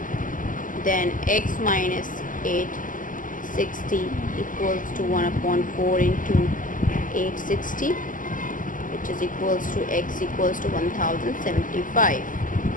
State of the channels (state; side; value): late; right; 0.38 ms